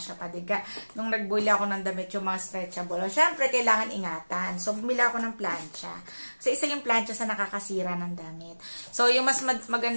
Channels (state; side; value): inverted; both; correlation -1.00